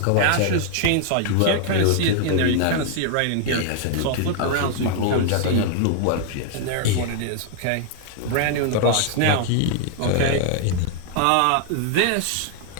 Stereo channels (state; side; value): different; both; correlation 0.00